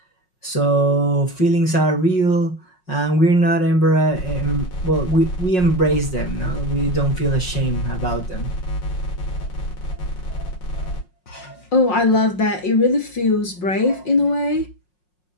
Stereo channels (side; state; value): right; late; 5.5 ms